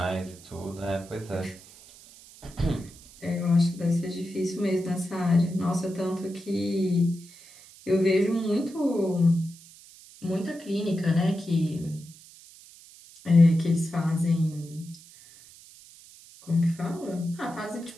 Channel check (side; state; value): right; noise; hiss, 21 dB below the sound